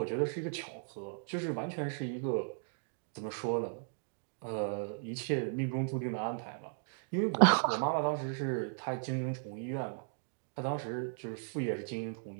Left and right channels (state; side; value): silent; left; digital silence